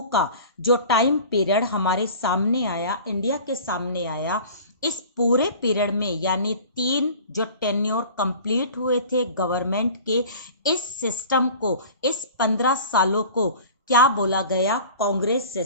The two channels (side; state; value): both; inverted; correlation -0.42